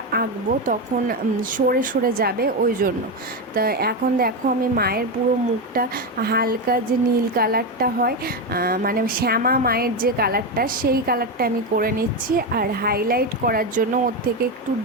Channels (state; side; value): normal; both; correlation 0.12